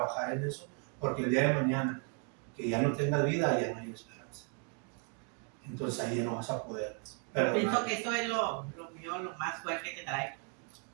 en eso, porque el día de mañana, que ya no tengas vida, ya no hay esperanza. Entonces ahí ya no vas a poder perdonar. Pienso que eso es lo mío, lo más fuerte que trae.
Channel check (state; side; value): quieter; left; 35.9 dB